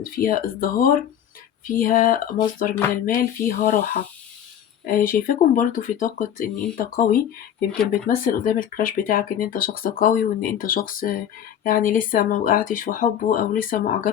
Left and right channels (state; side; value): quieter; right; 9.6 dB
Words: فيها ازدهار، فيها مصدر من المال، فيها راحة. شايفاكم برضو في طاقة ان انت قوي، يمكن بتمثل قدام الكراش بتاعك ان انت شخص قوي، وان انت شخص يعني لسه ما وقعتش في حبه او لسه ما